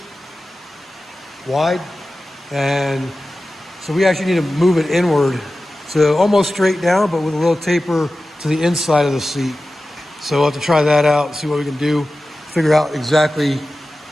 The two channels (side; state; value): both; normal; correlation 0.95